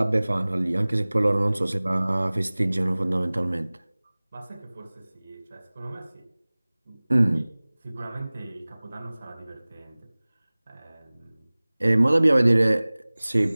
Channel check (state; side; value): inverted; both; correlation -1.00